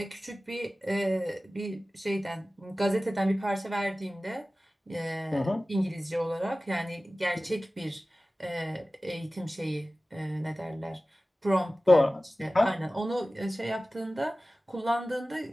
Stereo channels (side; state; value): both; normal; correlation 0.97